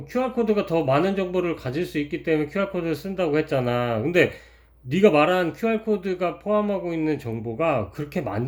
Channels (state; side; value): identical; both; correlation 1.00